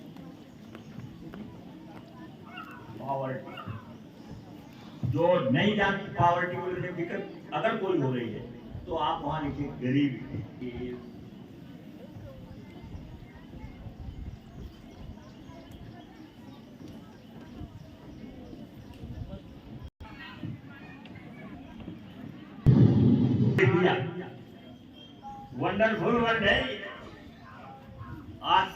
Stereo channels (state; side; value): identical; both; correlation 1.00